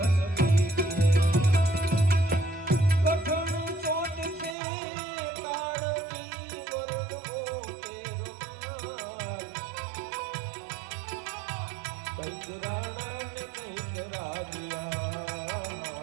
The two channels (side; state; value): left; drops out; at 4.5 s